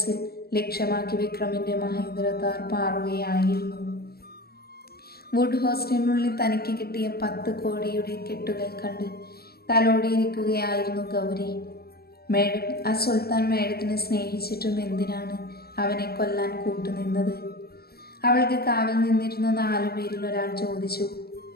ലക്ഷ്യമാക്കി വിക്രമിൻ്റെ മഹേന്ദ്ര താർ പാറുകയായിരുന്നു. വുഡ് ഹോസ്റ്റലിനുള്ളിൽ തനിക്ക് കിട്ടിയ 10 കോടിയുടെ കെട്ടുകൾ കണ്ട് തലോടിയിരിക്കുകയായിരുന്നു ഗൗരി. മേഡം, ആ സുൽത്താൻ മേഡത്തിനെ സ്നേഹിച്ചിട്ടും എന്തിനാണ് അവനെ കൊല്ലാൻ കൂട്ടുനിന്നത്? അവൾക്ക് കാവൽ നിന്നിരുന്ന 4 പേരിൽ ഒരാൾ ചോദിച്ചു.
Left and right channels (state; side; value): late; right; 0.45 ms